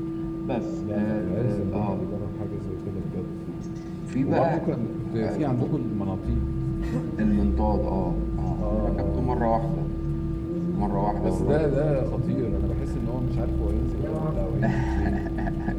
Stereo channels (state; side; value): identical; both; correlation 1.00